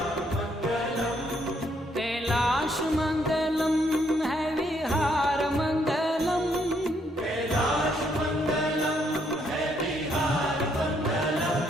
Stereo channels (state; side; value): normal; both; correlation 0.71